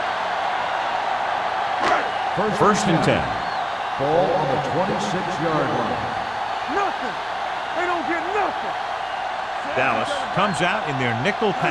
First and 10. Ball on the 26-yard line. Nothing. They don't get nothing. Dallas comes out in their nickel We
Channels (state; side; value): identical; both; correlation 1.00